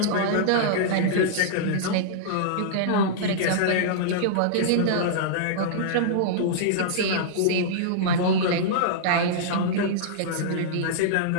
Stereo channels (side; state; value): both; different; correlation -0.02